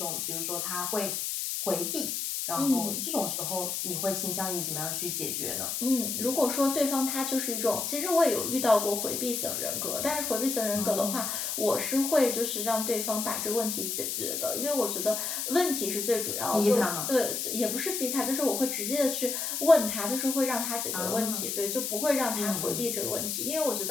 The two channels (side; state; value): left; noise; hiss, 2 dB below the sound